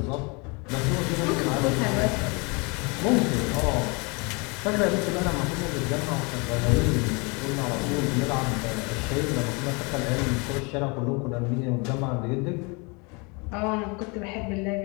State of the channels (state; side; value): quieter; right; 29.9 dB